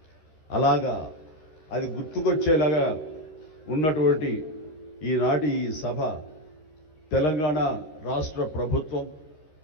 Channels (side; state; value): right; late; 13 ms